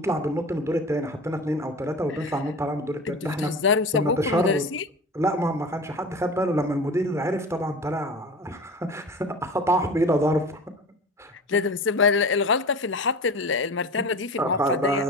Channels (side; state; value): both; normal; correlation 0.34